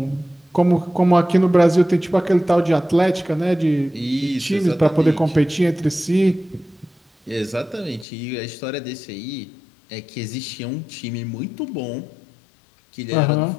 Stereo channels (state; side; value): drops out; right; at 8.1 s